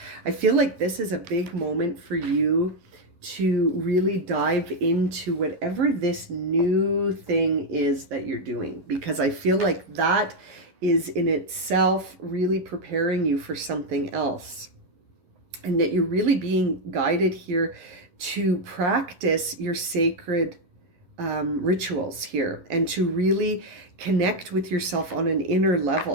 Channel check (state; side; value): late; left; 11 ms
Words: I feel like this is a big moment for you to really dive into whatever this new thing is that you're doing, because I feel like that is in itself really preparing you for something else, and that you're really being guided here to practice your sacred rituals here and to really connect with yourself on an inner